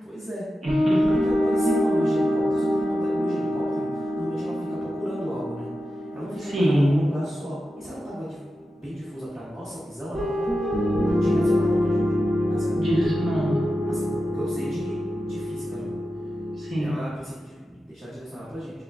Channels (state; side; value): normal; both; correlation 0.92